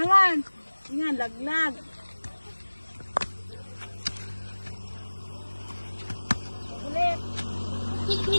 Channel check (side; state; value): both; inverted; correlation -1.00